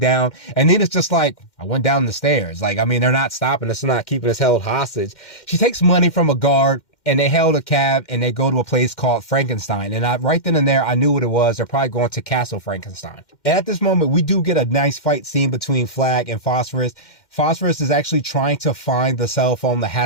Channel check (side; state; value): right; late; 2.1 ms